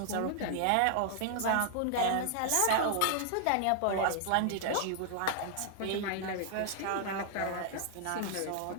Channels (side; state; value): both; different; correlation 0.00